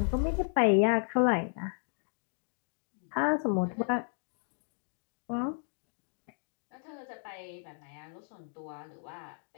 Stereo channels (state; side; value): silent; right; 55 dB below the other